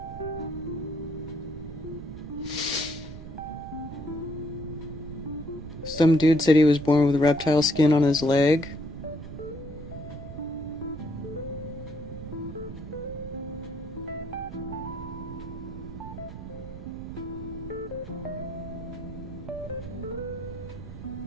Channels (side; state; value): right; noise; rumble, 11 dB below the sound